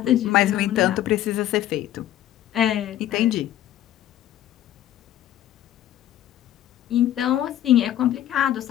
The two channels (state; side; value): quieter; right; 12.4 dB